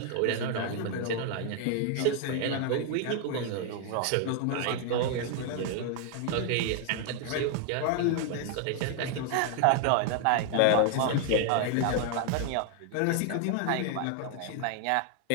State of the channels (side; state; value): both; different; correlation 0.00